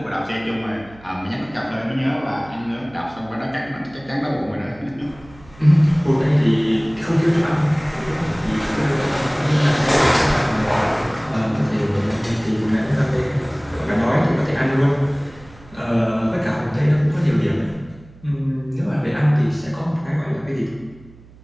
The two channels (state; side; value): noise; right; hum, 23 dB below the sound